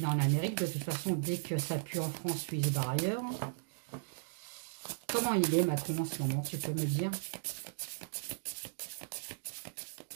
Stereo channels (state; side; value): silent; left; digital silence